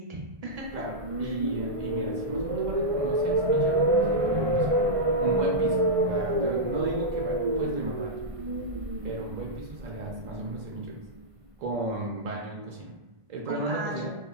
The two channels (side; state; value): left; late; 1.5 ms